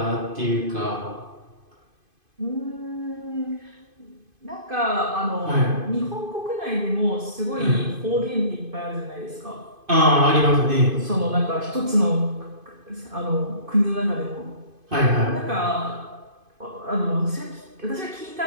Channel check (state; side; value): late; left; 2.5 ms